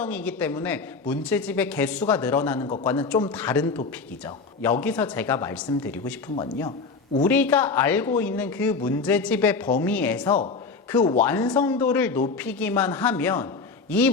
때문에 문제집의 개수가 늘어나는 것과는 좀 다른 토픽이죠. 여기서 제가 말씀드리고 싶은 건요, 우리가 알고 있는 그 문제집의 범위에서 그 완성도를 높이기만 하면 이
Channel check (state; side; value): quieter; right; 4.5 dB